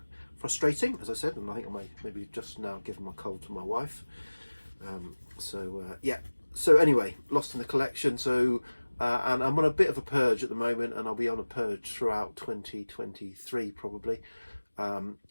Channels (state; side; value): inverted; both; correlation -1.00